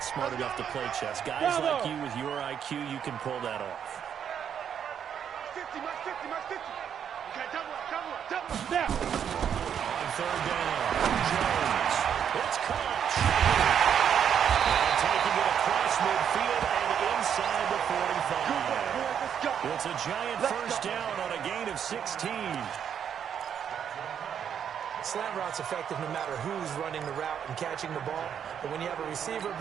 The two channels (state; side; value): quieter; left; 8.4 dB